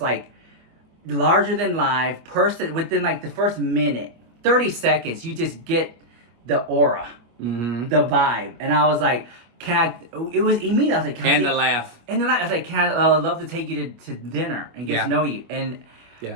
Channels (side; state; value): left; late; 24 ms